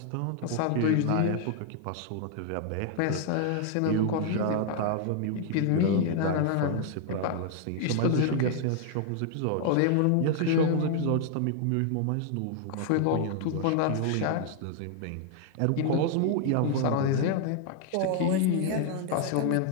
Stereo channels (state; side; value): different; both; correlation 0.00